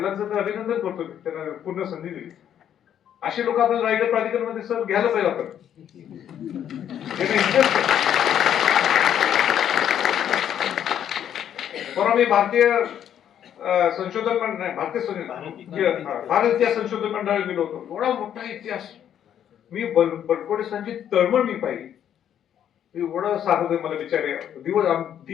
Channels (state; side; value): quieter; right; 9.8 dB